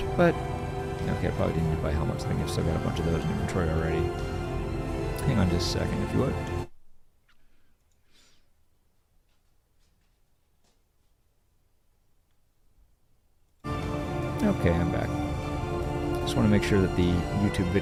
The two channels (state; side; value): identical; both; correlation 1.00